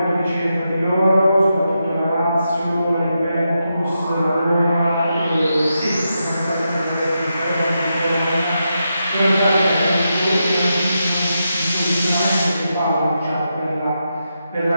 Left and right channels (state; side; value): inverted; both; correlation -0.86